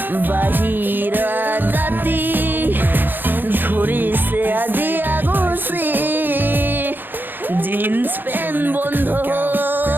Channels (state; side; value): late; left; 0.093 ms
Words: বাহিৰা জাতি ধৰিছে আজি আগুচি জিন্স পেণ্ট বন্ধ